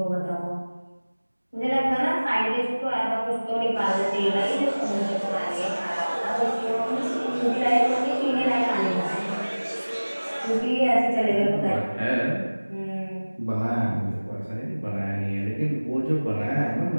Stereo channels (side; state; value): both; inverted; correlation -1.00